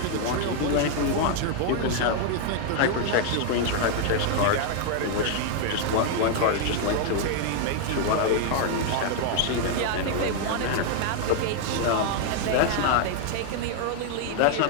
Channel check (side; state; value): both; different; correlation 0.00